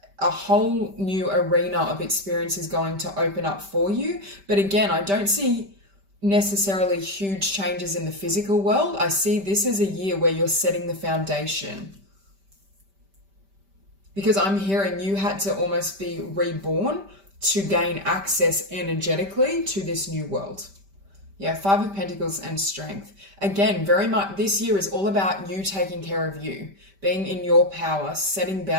a whole new arena of experience is going to open up for you. But again, I don't see necessarily huge changes in the physical world. I see this as a year where you're setting the foundation. Because I'm hearing you had to almost be reborn to gain access energetically to this new world. Yeah, 5 of Pentacles and strength. Again, very much this year is all about you taking care of you, being in your power, setting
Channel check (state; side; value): late; left; 5.1 ms